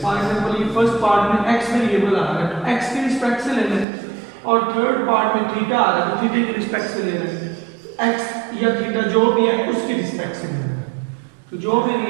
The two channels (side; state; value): left; drops out; at 3.9 s